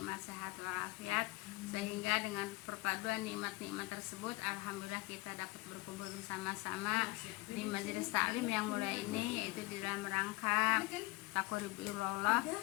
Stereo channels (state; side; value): quieter; right; 22.2 dB